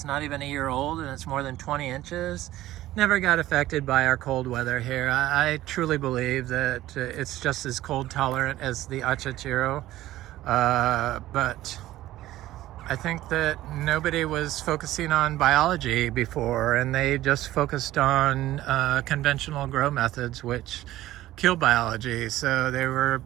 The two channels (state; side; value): quieter; left; 15.2 dB